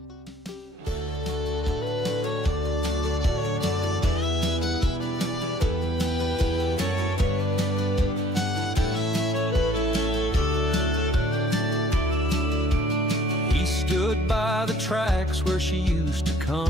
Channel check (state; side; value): normal; both; correlation 0.56